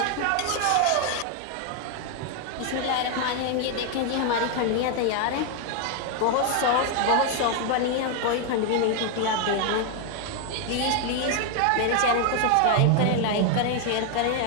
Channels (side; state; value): both; different; correlation 0.01